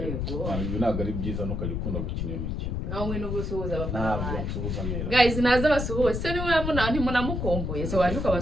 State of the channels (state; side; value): noise; left; rumble, 2 dB below the sound